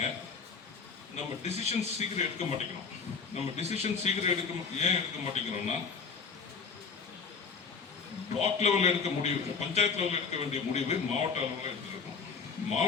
நம்ம டிசிஷன் சீக்கிரம் எடுக்க மாட்டேங்கிறோம். நம்ம டிசிஷன் சீக்கிரம் ஏன் எடுக்க மாட்டேங்கிறோம்னா, பிளாக் லெவலில் எடுக்க முடிவு, பஞ்சாயத்து லெவலில் எடுக்க வேண்டிய முடிவு மாவட்ட அளவில் எடுத்துருக்கோம்.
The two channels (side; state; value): right; quieter; 5.4 dB